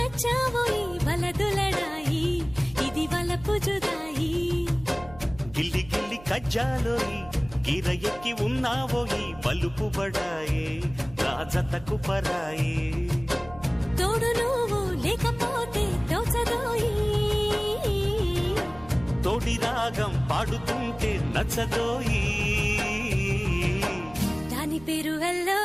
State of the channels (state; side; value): noise; right; hum, 20 dB below the sound